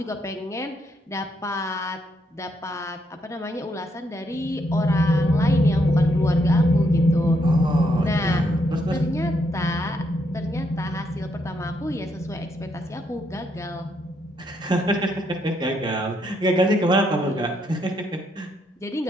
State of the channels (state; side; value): normal; both; correlation 0.76